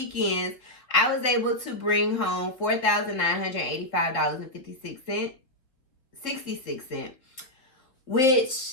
I was able to bring home $4,985.66,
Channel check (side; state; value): right; late; 3.9 ms